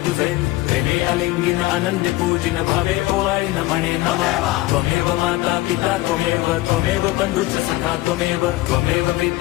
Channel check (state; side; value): quieter; right; 18.3 dB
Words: तुझे प्रेमे अलिंगिन आनंद पूजिन भावे ओवाय न म्हणे नमः त्वमेव माता पिता त्वमेव बंधुच सखा त्वमेव